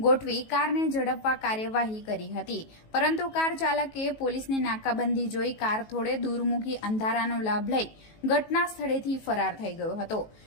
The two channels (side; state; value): right; late; 19 ms